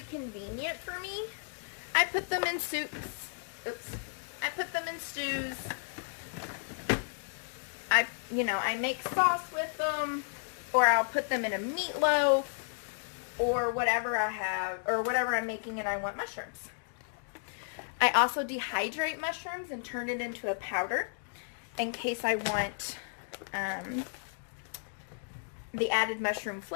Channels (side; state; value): right; silent; digital silence